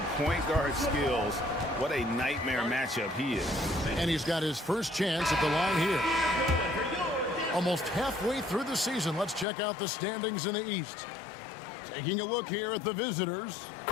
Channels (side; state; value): right; drops out; at 9.5 s